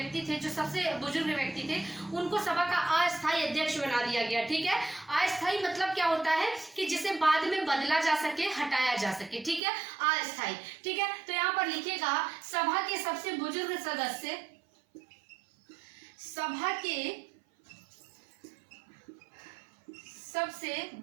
थे, जो सबसे बुजुर्ग व्यक्ति थे, उनको सभा का अस्थायी अध्यक्ष बना दिया गया। ठीक है, अस्थायी मतलब क्या होता है कि जिसे बाद में बदला जा सके, हटाया जा सके। ठीक है, अस्थायी। ठीक है, तो यहाँ पर लिखिएगा सभा के सबसे बुजुर्ग सदस्य, सभा के सबसे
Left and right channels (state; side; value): drops out; left; at 9.6 s